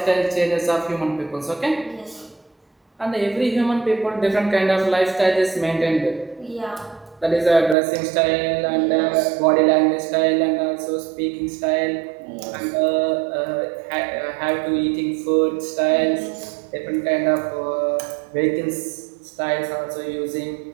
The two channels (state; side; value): drops out; left; at 7.8 s